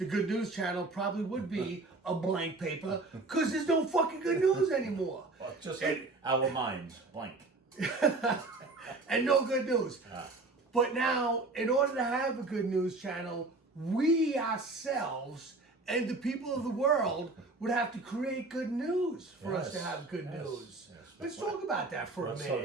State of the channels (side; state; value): left; quieter; 3.3 dB